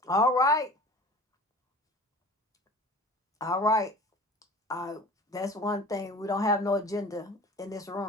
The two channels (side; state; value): both; normal; correlation 0.41